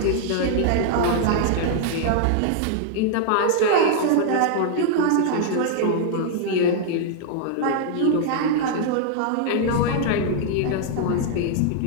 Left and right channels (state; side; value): different; both; correlation 0.00